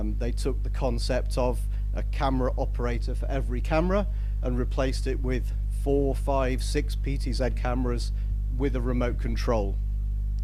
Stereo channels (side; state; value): both; identical; correlation 1.00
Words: They took the concept of a camera operator for every camera and replaced it with 4, 5, 6 PTZ cameras with a remote control.